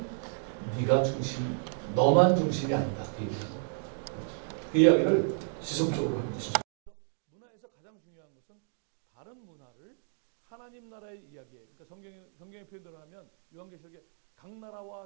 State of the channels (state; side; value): silent; left; digital silence